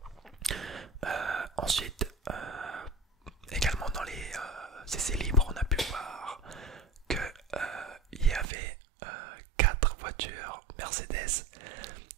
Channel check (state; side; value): drops out; left; at 8.5 s